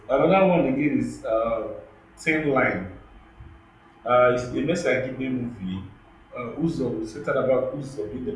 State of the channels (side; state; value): both; identical; correlation 1.00